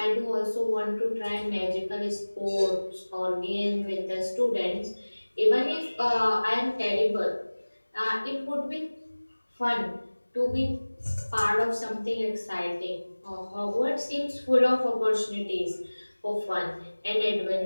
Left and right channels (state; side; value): inverted; both; correlation -1.00